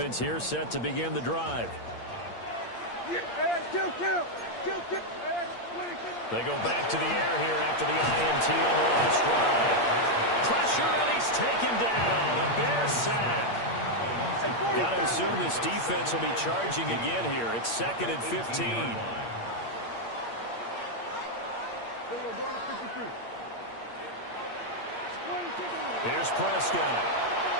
here set to begin the drive. They go back to the air here after the INT on the last drive. Pressure, and he's taken down. A Bear sack. Got to assume this defense will be charging again here. It's 2nd and 15. Here's Prescott.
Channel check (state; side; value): late; right; 8.6 ms